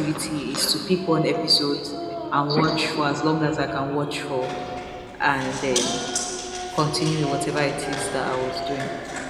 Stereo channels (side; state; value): both; identical; correlation 1.00